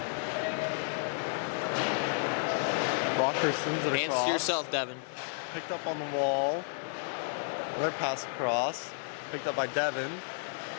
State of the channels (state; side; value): silent; right; 56 dB below the other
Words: Rockhurst sends it Hands across. to yourself, Devin. Picked up on the wall. Another pass across. Picked up by Devin.